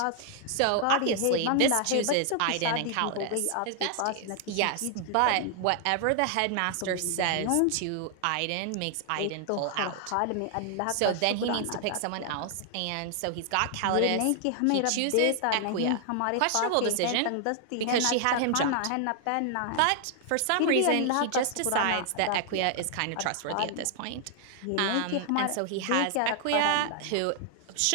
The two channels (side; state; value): both; different; correlation 0.00